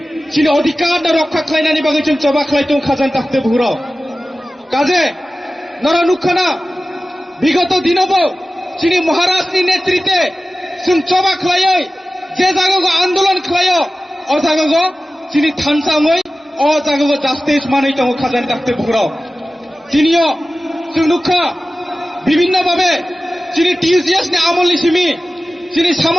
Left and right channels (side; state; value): both; normal; correlation 0.96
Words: चिनि अधिकार रक्षा खालायनायनि बागै जों जबा खालायदों खाजान ताखते बुहुराव काजे नरा नुखाना बिगत दिनावबो चिनि महाराजनि नेतृत्वे जों जबा खालायै जे जायगायाव आन्दोलन खालायो अ जायगायाव चिनि थानसाङै अ जायगायाव जास्टिस मानै दङ खाजान ताखते बुहुराव दिनियो जों नुखा বিভিন্ন ভাবে চিনি TCS नि आमोलनि सिमि चिनि